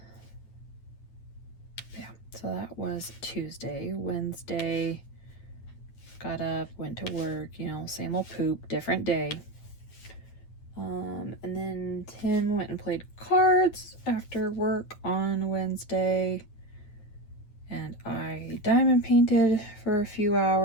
Yeah, so that was Tuesday. Wednesday, got up, went to work, you know, same old poop, different day. And then Tim went and played cards after work on Wednesday. And I diamond painted for a few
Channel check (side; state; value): right; late; 9.5 ms